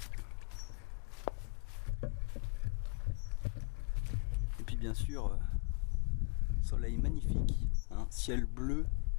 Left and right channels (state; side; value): quieter; right; 33.5 dB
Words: Et puis bien sûr, soleil magnifique, hein, ciel bleu,